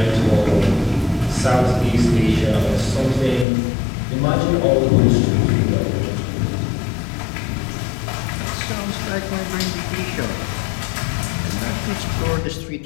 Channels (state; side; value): drops out; right; at 3.5 s